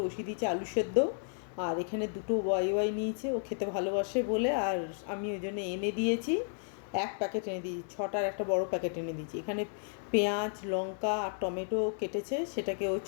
বসিয়ে দিয়েছে আলু সেদ্ধ। আর এখানে দুটো ওয়াই নিয়েছে, ও খেতে ভালোবাসে বলে। আর আমি ওই জন্য এনে দিয়েছি, এক প্যাকেট এনে দিয়েছি, ছটার একটা বড় প্যাকেট এনে দিয়েছি। এখানে পেঁয়াজ, লঙ্কা আর টমেটো কেটেছে, সেটাকে ও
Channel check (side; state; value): right; silent; 56 dB below the other